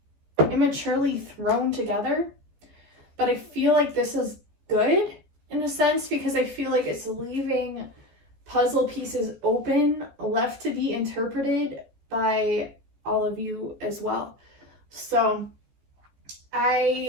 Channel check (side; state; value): left; late; 15 ms